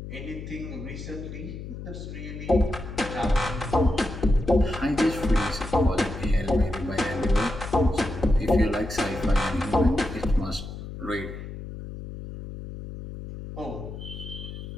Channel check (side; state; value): left; noise; hum, 10 dB below the sound